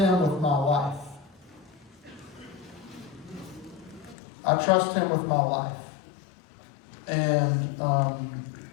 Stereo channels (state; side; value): drops out; right; at 4.2 s